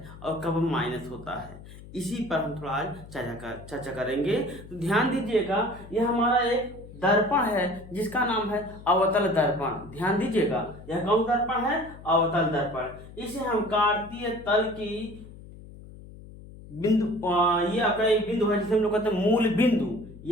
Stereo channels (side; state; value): left; noise; hum, 17 dB below the sound